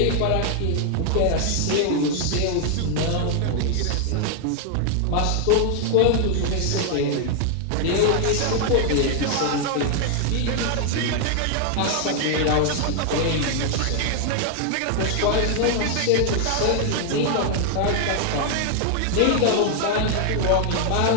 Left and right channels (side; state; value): both; different; correlation 0.00